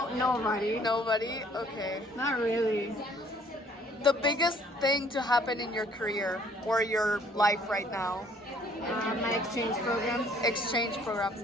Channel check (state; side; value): normal; both; correlation 0.60